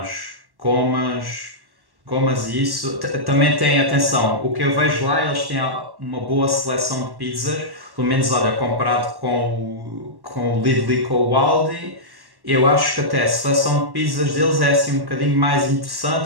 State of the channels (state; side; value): late; left; 1.1 ms